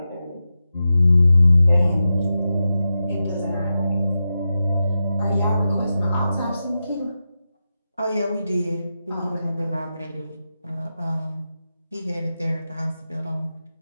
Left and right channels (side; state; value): both; inverted; correlation -0.90